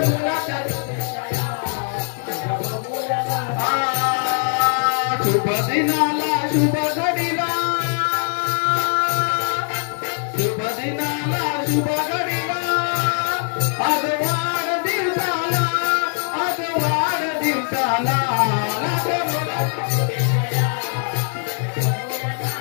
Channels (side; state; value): right; silent; 56 dB below the other